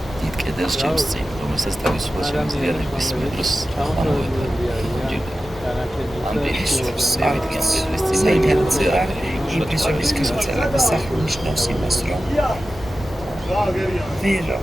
დიდ კედელს ჩემს წინ, რომელსაც თავისუფლად შემიძლია ნებისმიერ დროს ამოვედგა. ამ პირისუფლებს ევიდგენ კედლის წინ და იმპრესიონის გამოწერა და სახლი ნიშნავს იმას, რომ ვერ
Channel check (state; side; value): normal; both; correlation 0.93